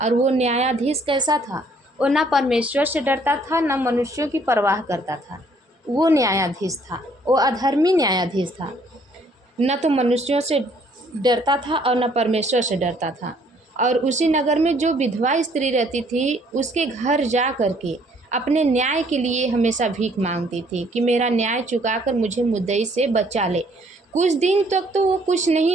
और वो न्यायाधीश कैसा था? वो ना परमेश्वर से डरता था, ना मनुष्यों की परवाह करता था। वो न्यायाधीश था, वो अधर्मी न्यायाधीश था, न तो मनुष्यों से डरता था और न परमेश्वर से डरता था। और उसी नगर में जो विधवा स्त्री रहती थी, उसके घर जा कर के अपने न्याय के लिए हमेशा भीख मांगती थी कि मेरा न्याय चुकाकर मुझे मुद्दई से बचा ले। कुछ दिन तक तो वो कुछ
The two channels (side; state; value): both; normal; correlation 0.63